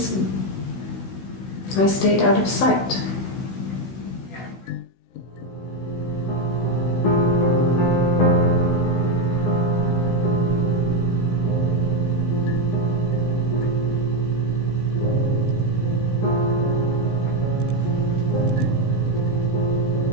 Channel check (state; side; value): late; right; 16 ms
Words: and I stayed out of sight.